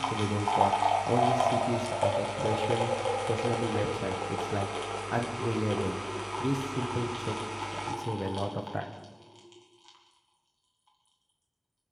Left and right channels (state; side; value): identical; both; correlation 1.00